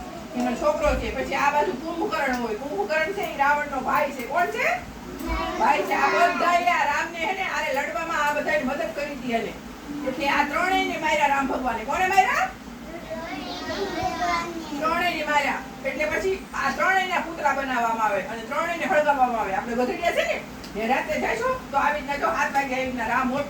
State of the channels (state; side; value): identical; both; correlation 1.00